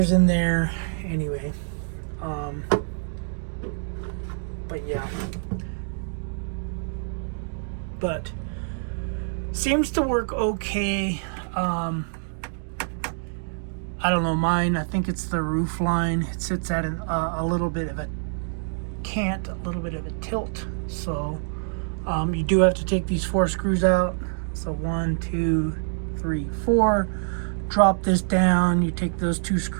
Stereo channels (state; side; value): silent; left; digital silence